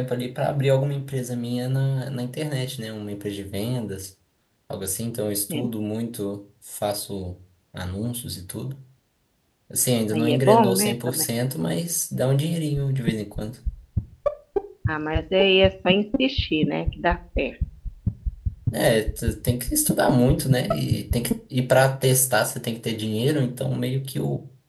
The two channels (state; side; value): identical; both; correlation 1.00